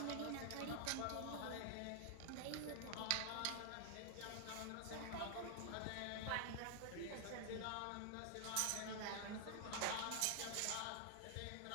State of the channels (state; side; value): different; both; correlation 0.00